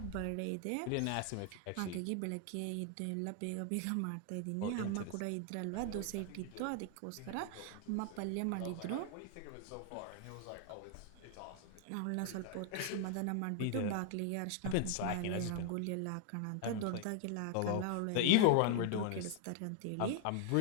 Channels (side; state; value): both; different; correlation 0.00